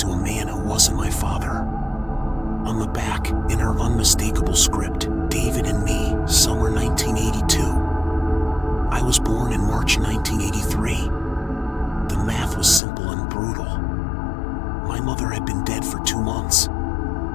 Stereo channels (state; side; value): drops out; right; at 12.8 s